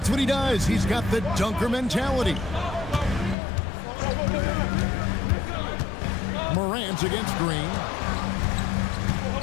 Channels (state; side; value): drops out; right; at 3.4 s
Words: what he does. He's got the dunker mentality. Morant's against Green.